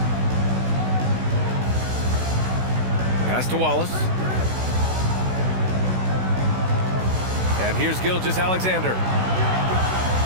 Pass to Wallace. And here's Gilgeous-Alexander.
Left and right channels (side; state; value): left; late; 16 ms